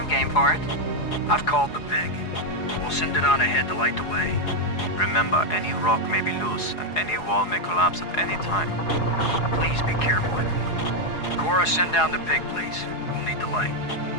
game for it. I've called the pig. We'll send it on ahead to light the way. Remember, any rock may be loose, and any wall may collapse at any time. Please be careful, everyone. Cora, send down the pig, please. We'll need the light.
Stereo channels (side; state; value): right; late; 4.8 ms